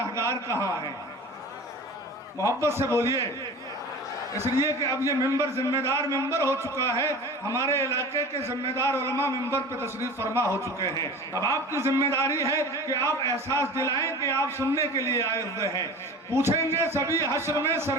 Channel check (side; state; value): both; normal; correlation 0.37